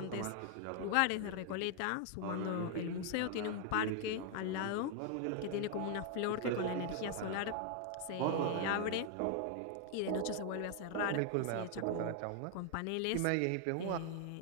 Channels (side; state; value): both; different; correlation 0.00